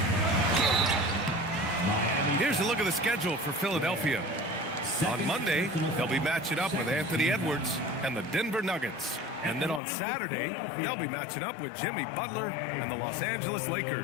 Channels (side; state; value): right; drops out; at 9.8 s